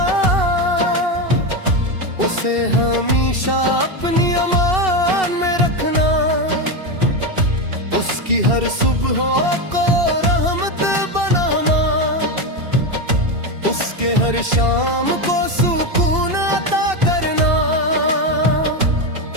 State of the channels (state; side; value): late; left; 2.7 ms